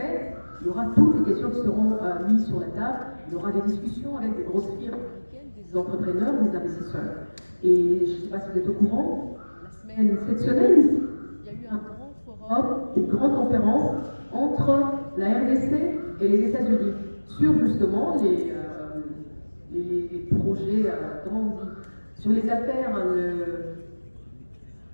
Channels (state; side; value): inverted; both; correlation -1.00